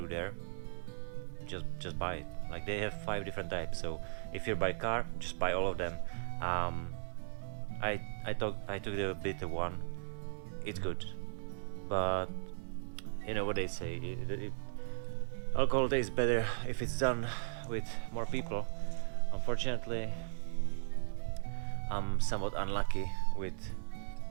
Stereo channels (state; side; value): silent; left; digital silence